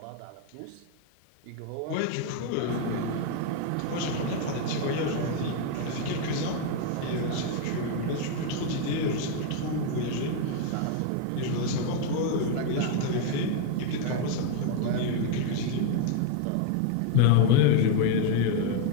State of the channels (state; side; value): different; both; correlation 0.01